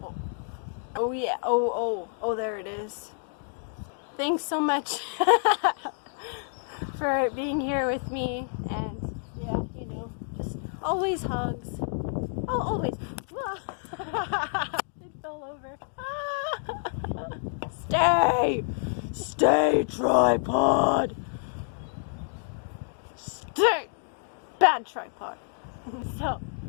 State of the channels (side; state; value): right; silent; 59 dB below the other